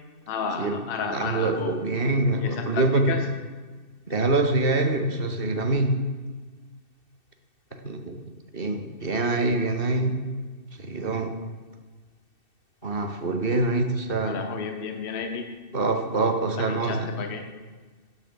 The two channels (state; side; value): late; right; 2.6 ms